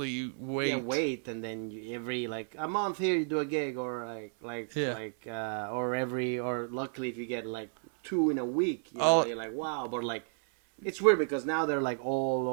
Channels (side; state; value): left; silent; 56 dB below the other